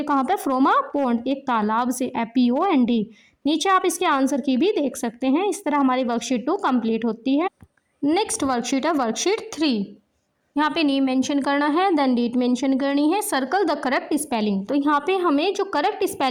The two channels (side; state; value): both; identical; correlation 1.00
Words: कहाँ पर, फ्रॉम अ पॉन्ड, एक तालाब से, POND। नीचे आप इसके आंसर की भी देख सकते हैं। इस तरह हमारी वर्कशीट 2 कंप्लीट होती है। नेक्स्ट वर्कशीट है वर्कशीट 3। यहाँ पे नेम मेंशन करना है, देन डेट मेंशन करनी है, सर्कल द करेक्ट स्पेलिंग। तो यहाँ पे हमें जो करेक्ट